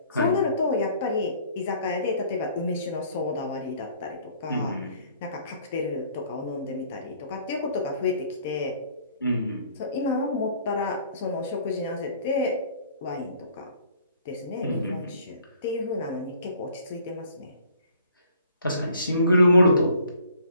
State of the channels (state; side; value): inverted; both; correlation -0.57